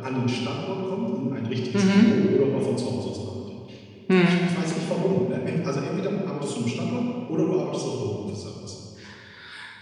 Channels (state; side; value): identical; both; correlation 1.00